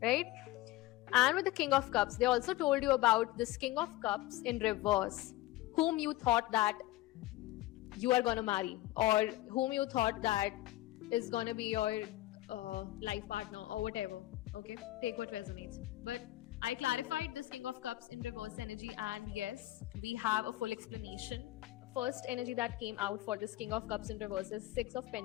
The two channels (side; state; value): right; quieter; 16.9 dB